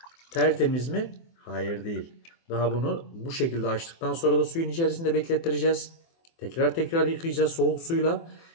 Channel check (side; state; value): right; late; 24 ms